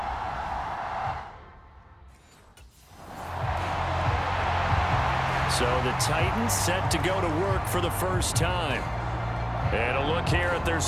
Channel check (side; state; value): both; identical; correlation 1.00